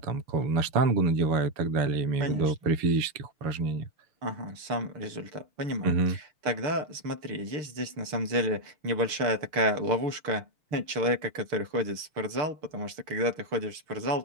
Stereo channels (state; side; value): late; left; 6.7 ms